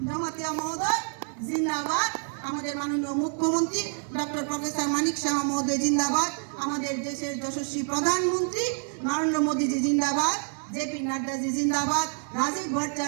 জমাতিয়া মহোদয় জিন্দাবাদ, আমাদের মাননীয় মুখ্যমন্ত্রী ডক্টর প্রফেসর মানিক সাহা মহোদয় জিন্দাবাদ, আমাদের দেশের যশস্বী প্রধানমন্ত্রী নরেন্দ্র মোদীজি জিন্দাবাদ, জেপি নাড্ডাজি জিন্দাবাদ, রাজীব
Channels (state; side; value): silent; left; 60 dB below the other